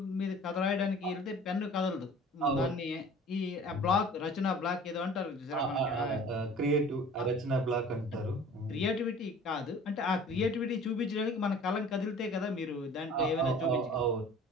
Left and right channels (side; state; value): both; normal; correlation 0.46